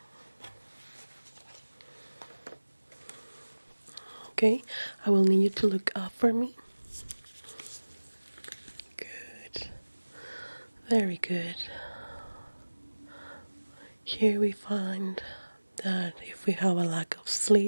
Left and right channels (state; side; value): inverted; both; correlation -1.00